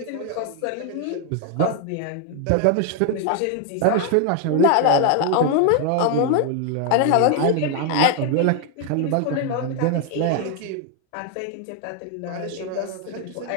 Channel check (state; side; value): different; both; correlation 0.00